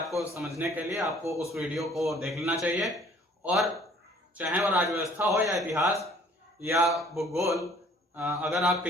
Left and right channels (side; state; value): both; normal; correlation 0.56